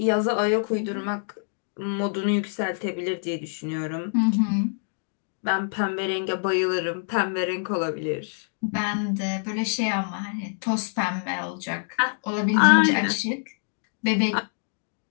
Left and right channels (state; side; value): silent; right; digital silence